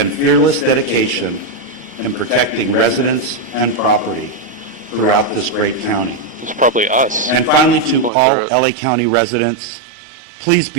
fearless dedication in protecting residents and property throughout this great county. It's probably us. And finally, to all LA County residents, please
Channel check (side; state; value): left; drops out; at 8.1 s